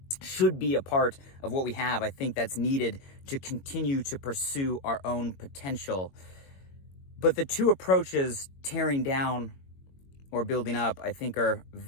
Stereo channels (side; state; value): right; late; 22 ms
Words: should be a part of what we have. I think that's needed to continue to pursue our own potential. But the two approaches, tearing down or building up, I think are